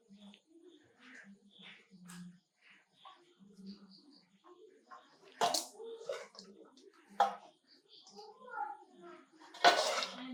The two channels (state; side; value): identical; both; correlation 1.00